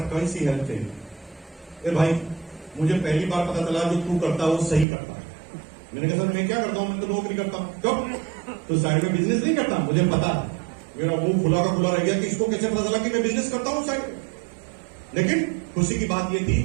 कौन सी हेल्प चाहिए? ए भाई मुझे पहली बार पता चला जो तू करता है वो सही करता है। मैंने कहा सर मैं क्या करता हूं, मैं तो नौकरी करता हूं। क्यों? तो साइड में बिजनेस नहीं करता? मुझे पता है। मेरा मुंह खुला का खुला रह गया कि इसको कैसे पता चला कि मैं बिजनेस करता हूं साइड में। लेकिन खुशी की बात यह थी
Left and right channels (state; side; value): drops out; left; at 4.9 s